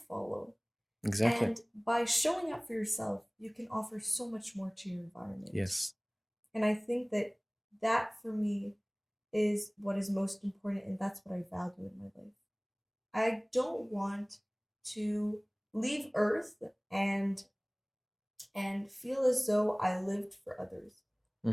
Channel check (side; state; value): both; identical; correlation 1.00